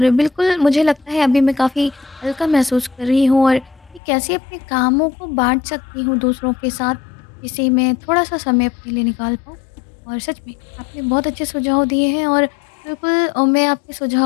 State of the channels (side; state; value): right; drops out; at 4.0 s